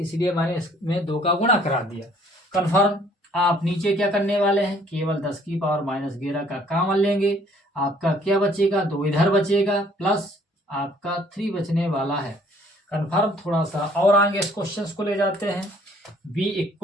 मैंने इसमें 2 का गुणा करा दिया। कन्फर्म आप नीचे क्या करने वाले हैं, केवल 10⁻11 का कॉमन लेंगे, आपका क्या बचेगा 2 इधर बचेगा, प्लस आपका 3 बचने वाला है। कन्फर्म थोड़ा सा और आगे इस क्वेश्चन को ले जाते हैं। B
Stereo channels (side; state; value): both; normal; correlation 0.60